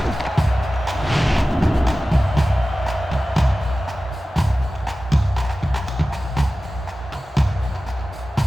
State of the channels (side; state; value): both; normal; correlation 0.96